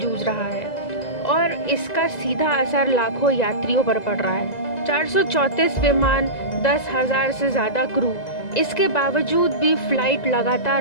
रहा है और इसका सीधा असर लाखों यात्रियों पर पड़ रहा है। 434 विमान, 10,000 से ज्यादा क्रू, इसके बावजूद भी फ्लाइट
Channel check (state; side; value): late; right; 1.9 ms